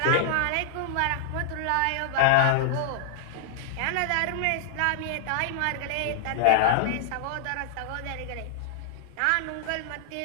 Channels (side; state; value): both; different; correlation -0.01